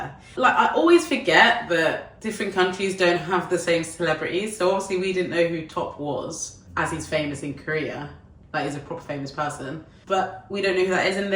Like, I always forget that different countries don't have the same celebrities. So obviously we didn't know who T.O.P was, as he's famous in Korea. Like, he's a proper famous person. But we don't know who that is, and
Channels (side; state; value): both; identical; correlation 1.00